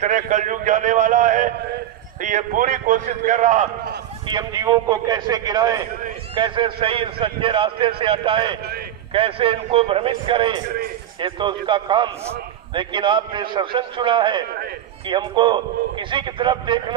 कलयुग जाने वाला है। ये पूरी कोशिश कर रहा कि हम जीवों को कैसे गिराएं, कैसे सही सच्चे रास्ते से हटाएं, कैसे इनको भ्रमित करें, ये तो उसका काम। लेकिन आपने सत्संग सुना है कि हमको किसी की तरफ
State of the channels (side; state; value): left; quieter; 11.4 dB